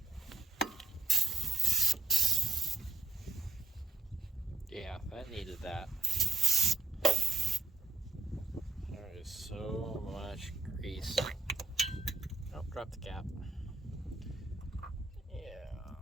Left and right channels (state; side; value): quieter; left; 3.5 dB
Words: Yeah, that needed that. There is so much grease. Oh, drop the cap. Yeah.